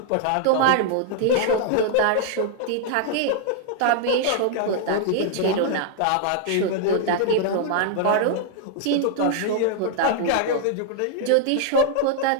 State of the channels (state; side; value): different; both; correlation 0.00